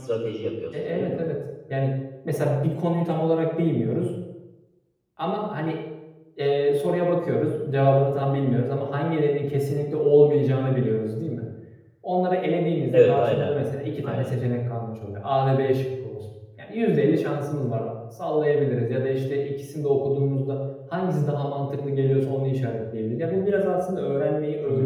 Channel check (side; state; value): both; identical; correlation 1.00